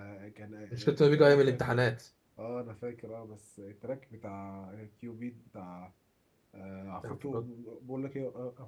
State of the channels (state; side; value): identical; both; correlation 1.00